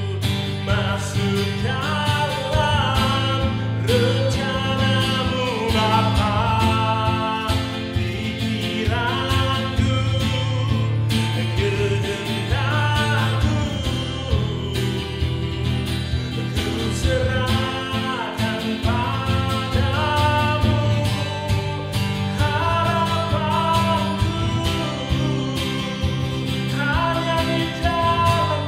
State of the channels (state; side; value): identical; both; correlation 1.00